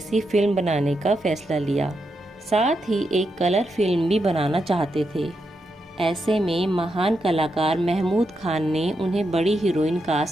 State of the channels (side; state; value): both; normal; correlation 0.84